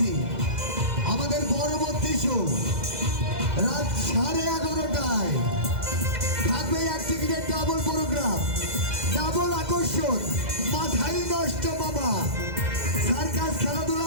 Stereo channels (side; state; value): left; late; 2.0 ms